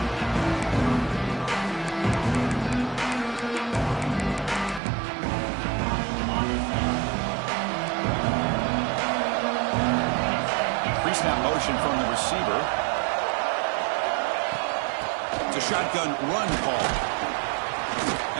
Pre-snap motion from the receiver. It's a shotgun run call.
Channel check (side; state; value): left; drops out; at 4.8 s